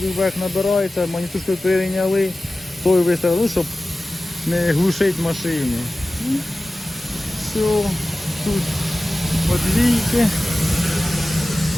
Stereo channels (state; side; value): normal; both; correlation 0.96